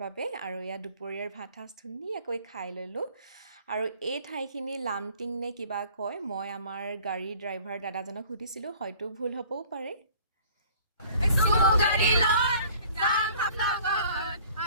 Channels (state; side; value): inverted; both; correlation -0.51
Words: বাবে, আৰু এয়া দুপৰীয়াৰ ভাত সাজ ধুনীয়াকৈ খাই ল'লোঁ। আৰু এই ঠাইখিনি লামটিং নে কিবা কয়, মই আমাৰ গাড়ীৰ ড্ৰাইভাৰ দাদাজনক সুধিছিলোঁ, হয়তো ভুল হ'বও পাৰে।